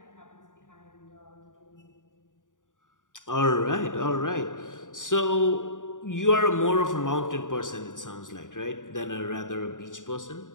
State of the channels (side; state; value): right; late; 0.88 ms